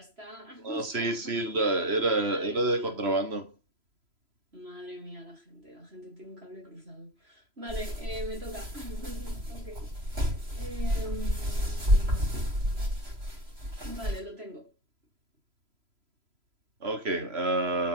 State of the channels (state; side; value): late; left; 3.0 ms